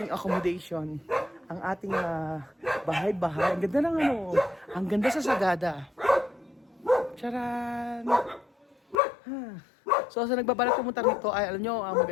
accommodation. Ang ating bahay-bahay. Ang ganda ng ano. Ang ganda sa Sagada. Charan! So sa nagbabalak pumunta rito ay alam nyo,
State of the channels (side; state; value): right; drops out; at 9.0 s